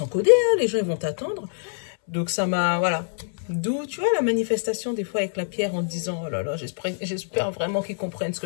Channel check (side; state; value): right; silent; 62 dB below the other